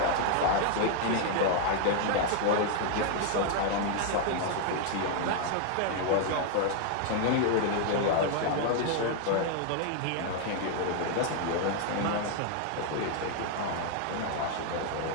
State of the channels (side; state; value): both; different; correlation 0.00